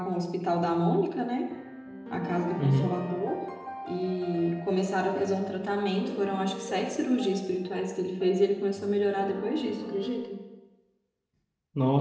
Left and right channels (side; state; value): both; identical; correlation 1.00